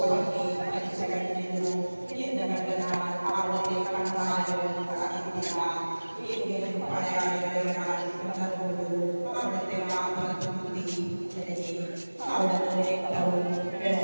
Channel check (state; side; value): inverted; both; correlation -1.00